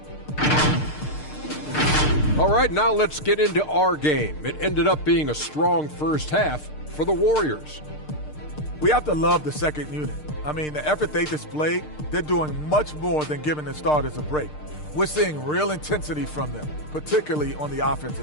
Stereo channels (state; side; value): late; right; 6.6 ms